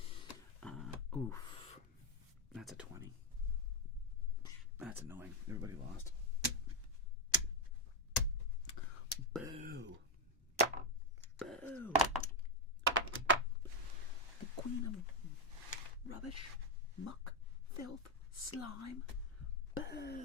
Oof. That's a 20. That's annoying. Everybody lost. Boo. Boo. The queen of rubbish, muck, filth, slime.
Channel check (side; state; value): both; normal; correlation 0.04